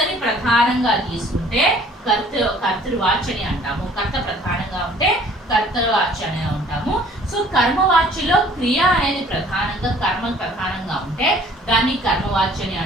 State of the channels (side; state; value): both; normal; correlation 0.55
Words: ప్రధానంగా తీసుకుంటే కర్తృవాచని అంటాము, కర్త ప్రధానంగా ఉంటే కర్తవాచ్య అని ఉంటాము. సో కర్మవాచ్యలో క్రియ అనేది ప్రధానంగా కర్మ ప్రధానంగా ఉంటే దాన్ని కర్మవాచ్యని